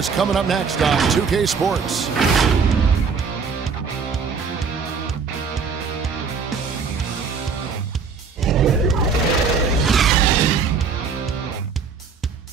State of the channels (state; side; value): quieter; left; 5.5 dB